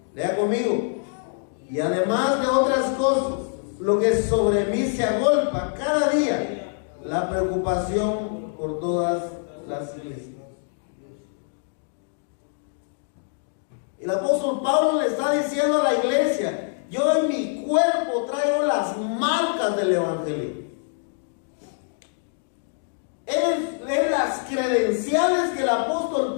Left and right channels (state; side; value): silent; right; digital silence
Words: Lea conmigo. Y además de otras cosas, lo que sobre mí se agolpa cada día, la preocupación por todas las iglesias. El apóstol Pablo le está diciendo a la iglesia: yo en mi cuerpo traigo las marcas del evangelio. Es las credenciales que el apóstol